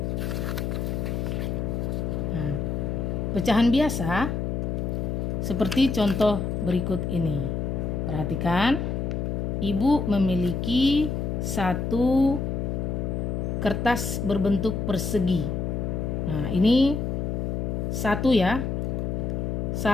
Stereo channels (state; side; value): noise; left; hum, 1 dB below the sound